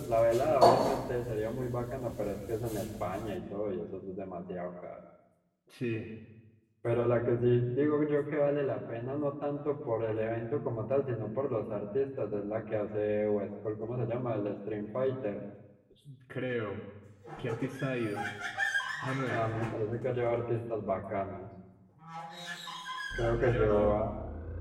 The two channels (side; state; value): both; identical; correlation 1.00